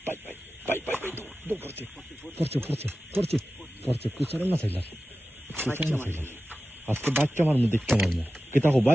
bye bye bye bye bye দৌড় পড়ছে পড়ছে পড়ছে পড়ছে পড়ছে কুচারে না চাইলার কুচারে না চাইলার আজকে বাচ্চা মারমু দেখতে মারমু কেতা হো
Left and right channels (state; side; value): normal; both; correlation 0.94